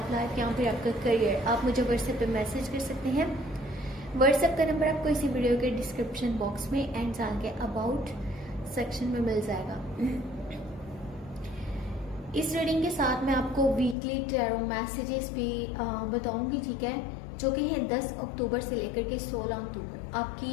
लाइफ या फिर आपका करियर, आप मुझे व्हाट्सएप पे मैसेज कर सकते हैं। व्हाट्सएप का नंबर आपको इसी वीडियो के डिस्क्रिप्शन बॉक्स में एंड चैनल के अबाउट सेक्शन में मिल जाएगा। इस रीडिंग के साथ मैं आपको वीकली टैरो मैसेजेस भी बताऊंगी, ठीक है, जो कि है 10 अक्टूबर से लेकर के 16 अक्टूबर।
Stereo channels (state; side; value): drops out; right; at 14.0 s